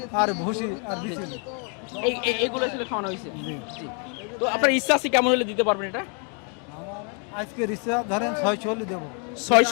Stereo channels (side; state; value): right; quieter; 38.7 dB